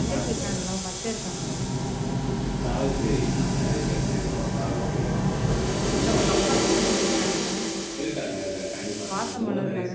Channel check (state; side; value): identical; both; correlation 1.00